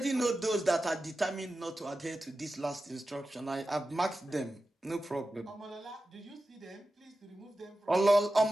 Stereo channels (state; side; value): normal; both; correlation 0.93